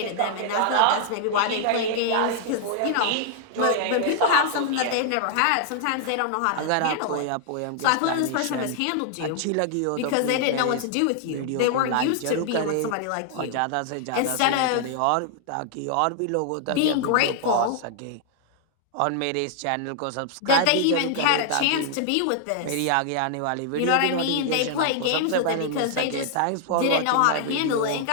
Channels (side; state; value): both; different; correlation 0.00